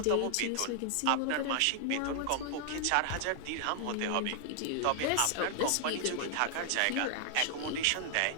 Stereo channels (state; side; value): different; both; correlation 0.00